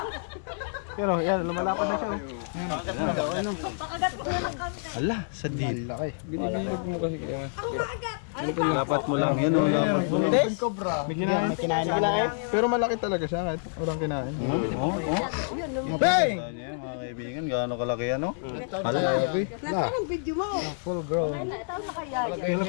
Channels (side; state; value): right; silent; digital silence